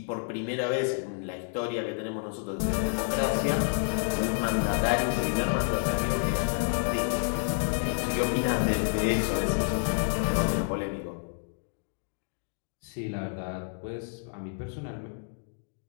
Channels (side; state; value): right; silent; digital silence